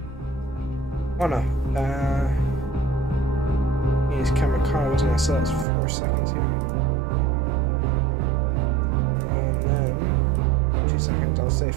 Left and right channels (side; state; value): left; drops out; at 5.7 s